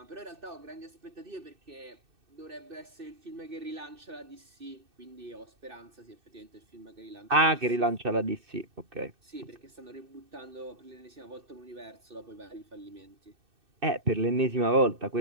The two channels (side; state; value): left; late; 2.6 ms